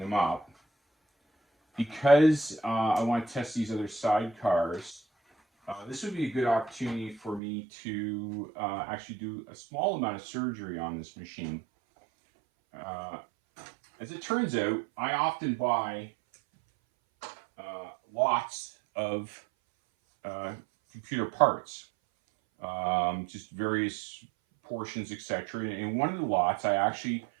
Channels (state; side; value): drops out; left; at 7.4 s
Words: up, because I want to test these other sidecars, this would be a good opportunity for me to actually do a small amount of surgery on this machine. As it turns out, I often buy lots of computer parts, just various portions, etc. And in one of the lots, I actually